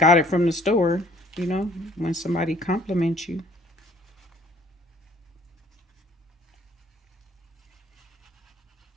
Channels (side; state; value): both; normal; correlation 0.58